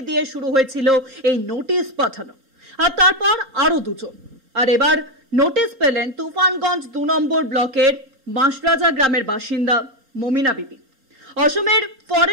দিয়ে শুরু হয়েছিল এই নোটিশ পাঠানো, আর তারপর আরো দুজন। আর এবার নোটিশ পেলেন তুফানগঞ্জ 2 নম্বর ব্লকের বাঁশরাজা গ্রামের বাসিন্দা মমিনা বিবি। অসমের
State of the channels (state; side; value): late; left; 3.8 ms